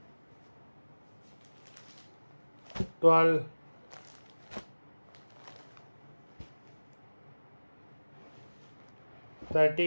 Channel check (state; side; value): inverted; both; correlation -1.00